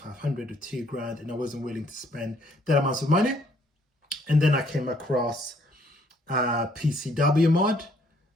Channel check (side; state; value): both; normal; correlation 0.65